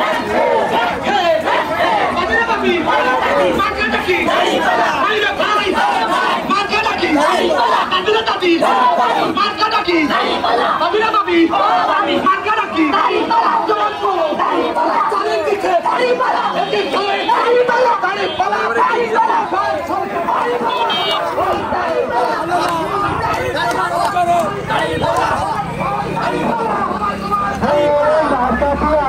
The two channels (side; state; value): both; identical; correlation 1.00